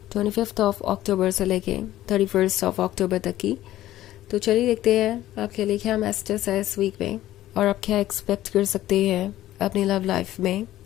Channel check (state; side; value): quieter; right; 14.2 dB